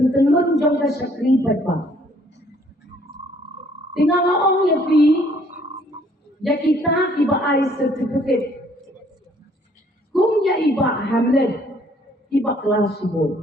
jong ka sakri ba tingala ong yapi ya kita iba ai certificate kum ya iba hamlet iba kelas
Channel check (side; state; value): both; normal; correlation 0.62